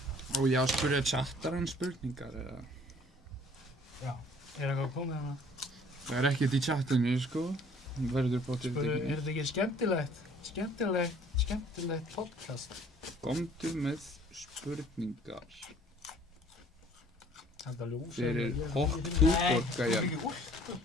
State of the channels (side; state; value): both; normal; correlation 0.55